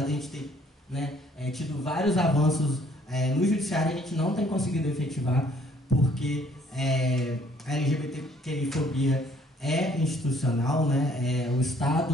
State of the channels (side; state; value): both; normal; correlation 0.61